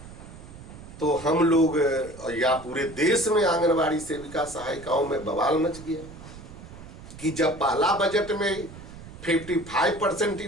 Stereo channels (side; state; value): right; noise; rumble, 16 dB below the sound